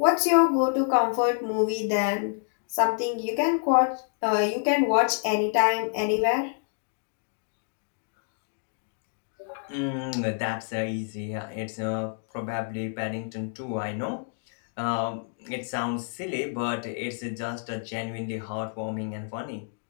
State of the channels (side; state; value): right; silent; 59 dB below the other